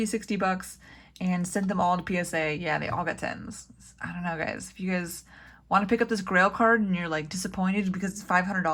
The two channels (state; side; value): identical; both; correlation 1.00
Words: $60 and sent them all to PSA. Yeah, they all got 10s. I don't know, guys. If you guys want to pick up this Grail card and you're like disappointed because it's